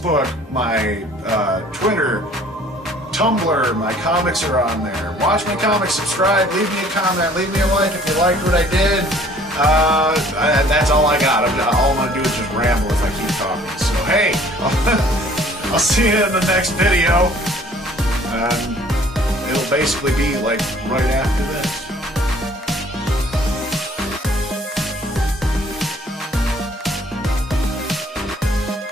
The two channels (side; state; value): both; normal; correlation 0.55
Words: my Twitter, Tumblr, my comics are on there. Watch my comics, subscribe, leave me a comment, leave me a like if you liked what I did. That's all I got. All I'm going to do is just ramble if I keep talking. So hey, I'll see you in the next video. And it'll basically be like right after this.